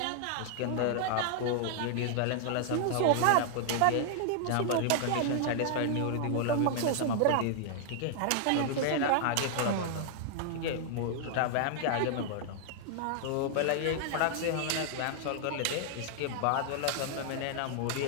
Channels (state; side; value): different; both; correlation -0.01